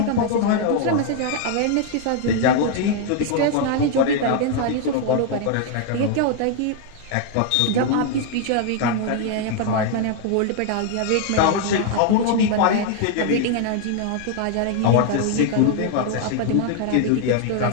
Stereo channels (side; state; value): both; different; correlation 0.00